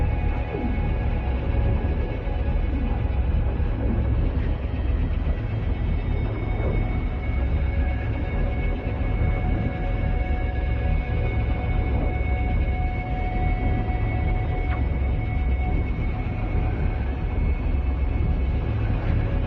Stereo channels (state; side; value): identical; both; correlation 1.00